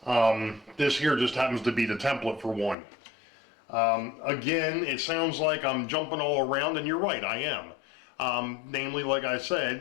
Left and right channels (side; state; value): right; drops out; at 2.8 s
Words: This here just happens to be the template for one. Again, it sounds like I'm jumping all around, and you're right, I am. Namely, like I